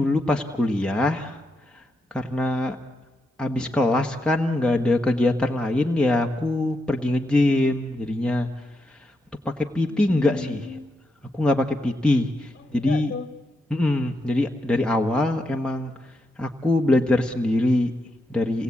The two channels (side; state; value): both; normal; correlation 0.84